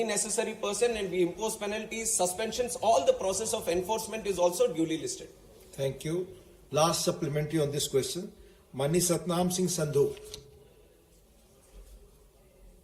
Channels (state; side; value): identical; both; correlation 1.00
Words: necessary person, and we impose penalties, suspensions. All the process of enforcement is also duly listed. Thank you. Last supplementary on this question. Mani Satnam Singh Sandhu.